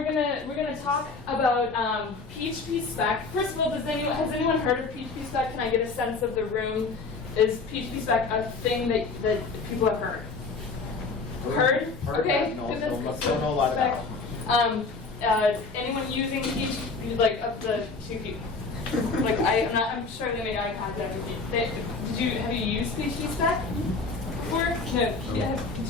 gonna talk about PhpSpec. First of all, has anyone heard of PhpSpec? Can I get a sense of the room? Is PhpSpec a thing that people have heard? Heard? Okay. No, don't know a lot about it. Anyone using PHP, like up to 2 people? Like I'm sure they made eye contact with you. Have you used PhpSpec before? No. Did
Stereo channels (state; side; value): quieter; right; 4.1 dB